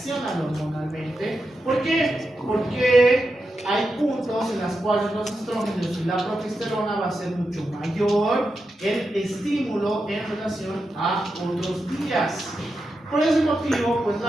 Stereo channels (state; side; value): normal; both; correlation 0.88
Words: hormonalmente. ¿Por qué? Porque hay puntos en los cuales los estrógenos y la progesterona va a ser mucho mayor el estímulo en relación a otros días. Por ese motivo, pues